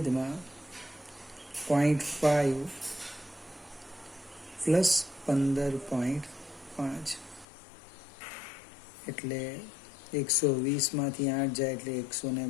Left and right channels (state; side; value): drops out; right; at 7.5 s